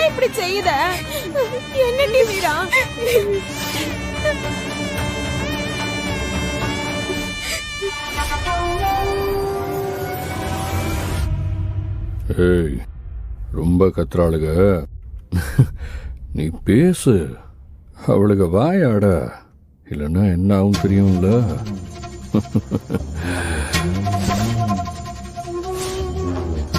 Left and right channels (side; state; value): both; identical; correlation 1.00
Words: இப்படி செய்யுத? என்னடி வீரா? ஏய், ரொம்ப கத்துறாளுக. நீ பேசு, அவளுக வாயாட, இல்லைன்னா என்ன ஆகும் தெரியும்ல.